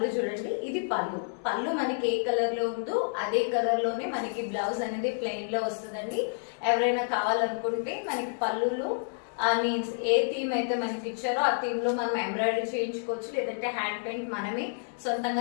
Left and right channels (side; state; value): right; silent; digital silence